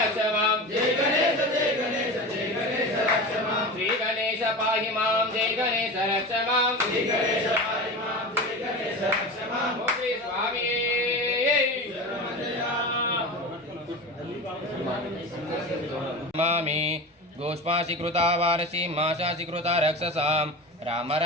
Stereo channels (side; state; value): both; normal; correlation 0.29